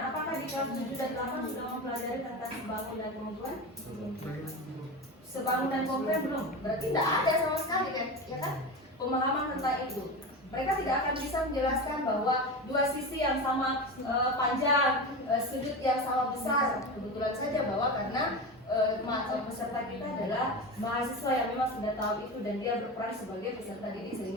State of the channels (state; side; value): normal; both; correlation 0.24